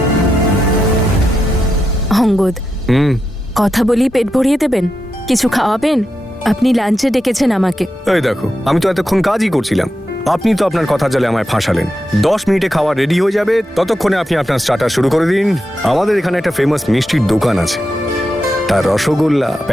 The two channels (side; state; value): both; normal; correlation 0.87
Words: অঙ্গদ, কথা বলি পেট ভরিয়ে দেবেন? কিছু খাওয়াবেন? আপনি লাঞ্চে ডেকেছেন আমাকে। এই দেখো, আমি তো এতক্ষণ কাজই করছিলাম, আপনি তো আপনার কথা জালে আমায় ফাঁসালেন। 10 মিনিটে খাওয়া রেডি হয়ে যাবে, ততক্ষণে আপনি আপনার স্টার্টার শুরু করে দিন। আমাদের এখানে একটা ফেমাস মিষ্টির দোকান আছে, তার রসগোল্লা,